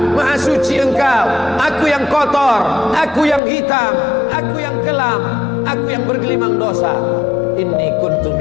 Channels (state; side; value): drops out; right; at 3.4 s